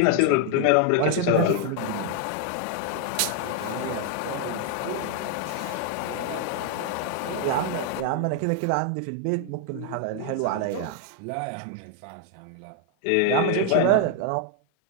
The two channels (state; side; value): different; both; correlation 0.01